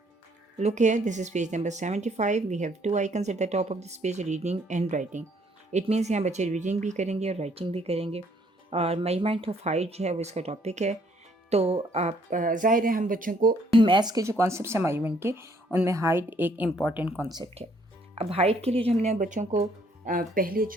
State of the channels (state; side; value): normal; both; correlation 0.65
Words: Look here, this is page number 75. We have two icons at the top of this page, reading and writing. It means यहाँ बच्चे reading भी करेंगे और writing भी करेंगे और measurement of height जो है वो इसका टॉपिक है। तो आप ज़ाहिर है हम बच्चों को मैथ्स के जो कॉन्सेप्ट हैं मेजरमेंट के, उनमें हाइट एक इम्पॉर्टेंट कॉन्सेप्ट है। अब हाइट के लिए जो हमने बच्चों को पहले